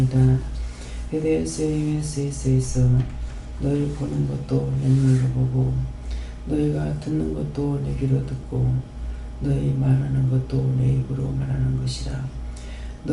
헤데스에서 너희 보는 것도 내 눈으로 보고 너희가 듣는 것도 내 귀로 듣고 너희 말하는 것도 내 입으로 말하는 것이라.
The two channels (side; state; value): both; identical; correlation 1.00